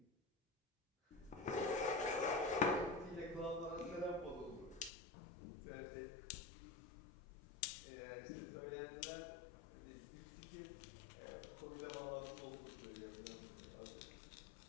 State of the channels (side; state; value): right; drops out; at 4.9 s